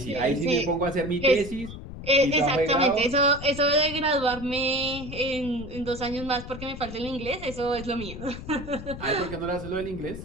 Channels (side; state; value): left; noise; rumble, 11 dB below the sound